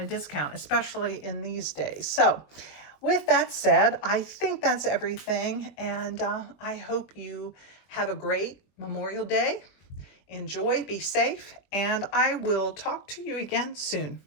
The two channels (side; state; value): right; late; 21 ms